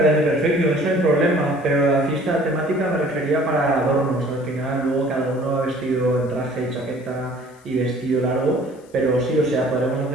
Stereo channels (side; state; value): left; noise; hiss, 30 dB below the sound